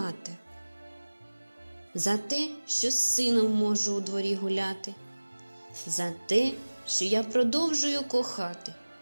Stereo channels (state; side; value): inverted; both; correlation -1.00